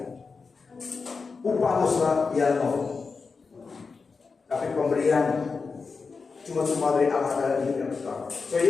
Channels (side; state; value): right; quieter; 4.7 dB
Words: Upah dosa ialah maut. Tapi pemberian cuma dari Allah adalah hidup yang kekal. So